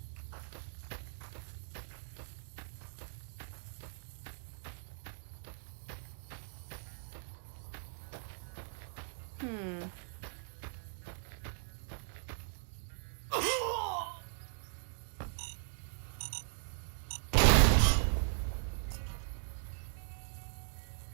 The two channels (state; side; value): silent; left; digital silence